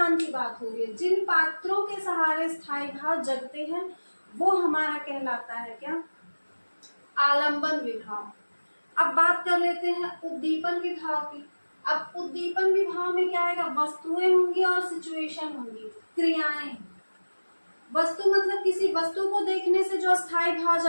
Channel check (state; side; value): inverted; both; correlation -1.00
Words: की बात हो रही है। जिन पात्रों के सहारे स्थायी भाव जगते हैं वो हमारा कहलाता है क्या, आलंबन विभाव। अब बात कर लेते हैं उद्दीपन विभाव की। अब उद्दीपन विभाव में क्या आएगा, वस्तुएं होंगी और सिचुएशन होंगी, क्रियाएं। वस्तु मतलब किसी वस्तु को देखने से जो स्थायी भाव